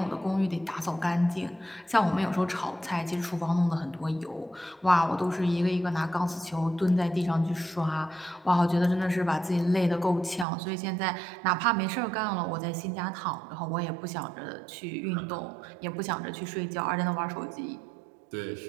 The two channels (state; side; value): drops out; left; at 10.5 s